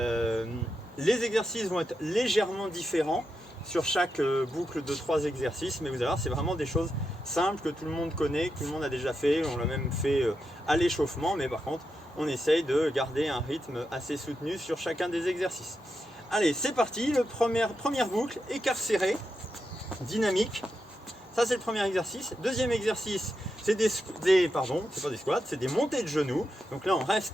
exercices vont être légèrement différents sur chaque boucle de 3 exercices, mais vous allez voir, c'est vraiment des choses simples que tout le monde connaît, que tout le monde a déjà fait. On l'a même fait à l'échauffement, mais par contre on essaye de garder un rythme assez soutenu sur chacun des exercices. Allez, c'est parti, première boucle, écart serré, dynamique. Ça c'est le premier exercice. Deuxième exercice, c'est pardon, c'est pas des squats, c'est des montées de genoux. Donc là on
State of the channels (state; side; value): normal; both; correlation 0.86